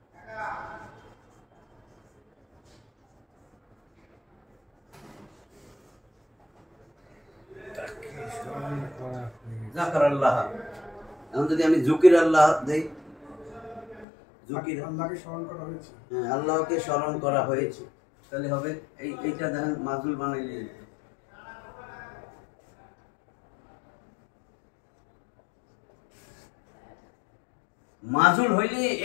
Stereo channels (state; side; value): drops out; right; at 14.1 s